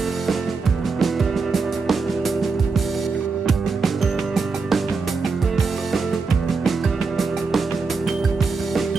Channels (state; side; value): quieter; left; 4.5 dB